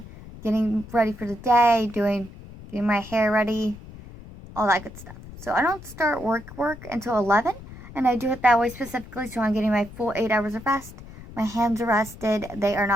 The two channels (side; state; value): left; noise; rumble, 16 dB below the sound